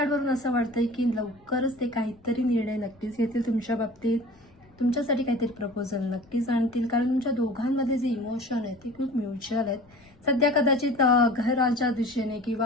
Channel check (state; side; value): noise; left; rumble, 29 dB below the sound